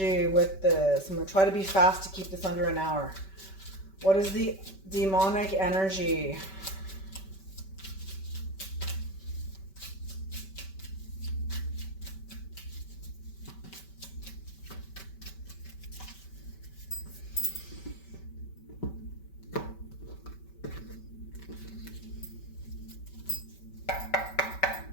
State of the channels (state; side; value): late; right; 5.2 ms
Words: with this? I'm going to try to be fast to keep this under an hour. What is the demonic energy?